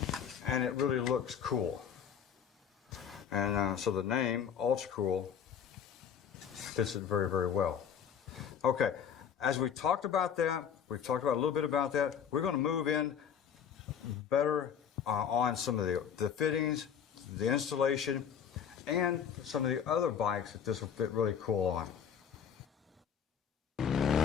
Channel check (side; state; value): right; quieter; 8.1 dB